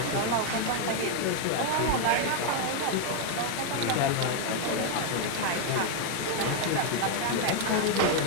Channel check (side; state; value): both; different; correlation 0.01